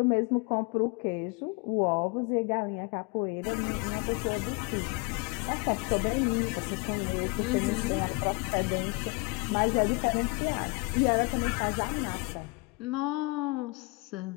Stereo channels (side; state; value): right; quieter; 28.5 dB